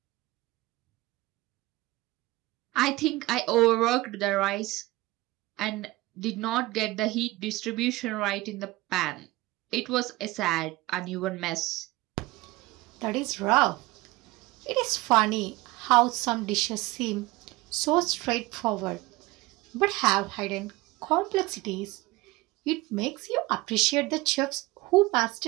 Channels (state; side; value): quieter; left; 20.2 dB